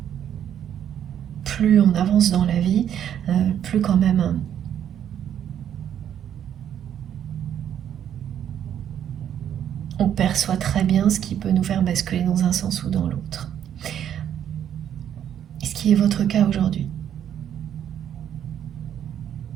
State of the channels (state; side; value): quieter; left; 9.8 dB